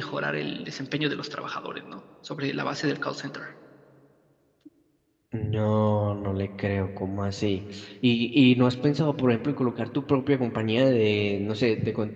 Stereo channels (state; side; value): identical; both; correlation 1.00